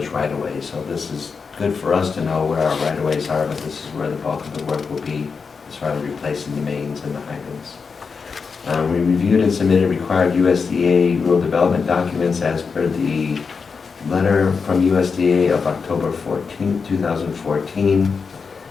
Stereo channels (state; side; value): quieter; right; 5.3 dB